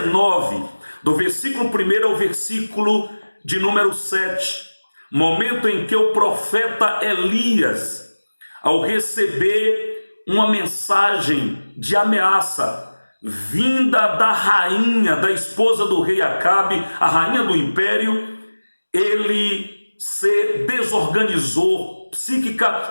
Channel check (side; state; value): both; inverted; correlation -1.00